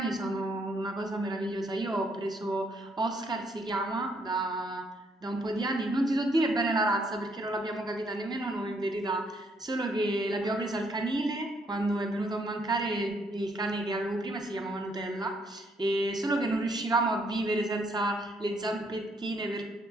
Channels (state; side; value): normal; both; correlation 0.70